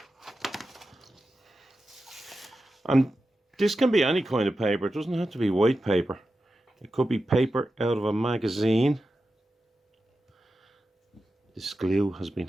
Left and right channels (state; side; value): normal; both; correlation 0.91